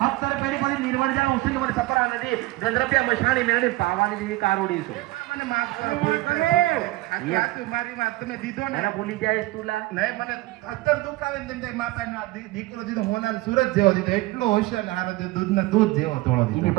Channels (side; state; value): left; quieter; 19.3 dB